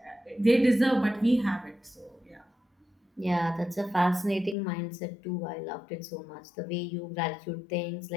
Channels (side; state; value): right; drops out; at 4.5 s